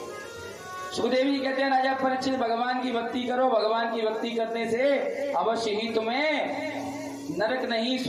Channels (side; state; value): both; identical; correlation 1.00